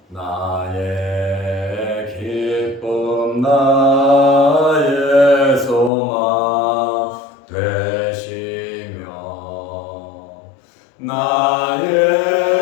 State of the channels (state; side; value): drops out; right; at 5.9 s